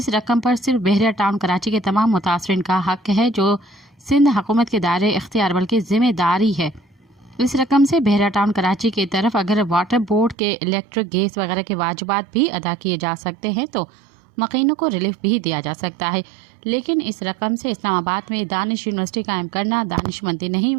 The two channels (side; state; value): left; drops out; at 10.4 s